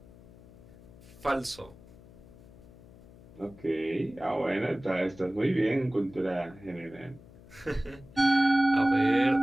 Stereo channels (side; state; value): left; noise; hum, 21 dB below the sound